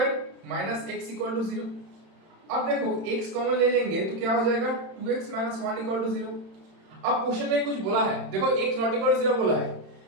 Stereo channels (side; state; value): left; late; 31 ms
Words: minus x equal to 0। अब देखो x कॉमन ले लेंगे तो क्या हो जाएगा 2x माइनस 1 इक्वल टू 0। अब क्वेश्चन में कुछ बोला है, देखो x नॉट इक्वल टू 0 बोला है,